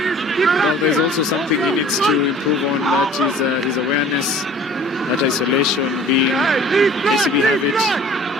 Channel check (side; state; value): both; normal; correlation 0.48